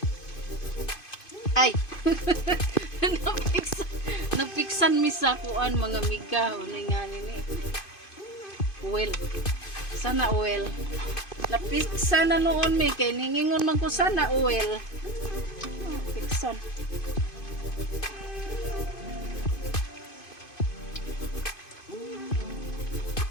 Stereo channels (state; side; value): late; right; 2.5 ms